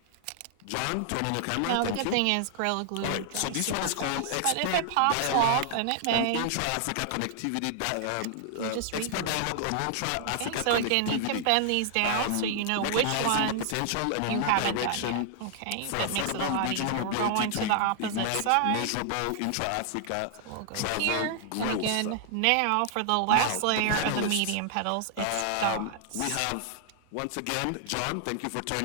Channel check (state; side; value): different; both; correlation 0.00